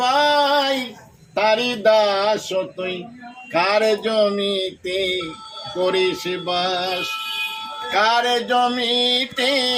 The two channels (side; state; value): both; identical; correlation 1.00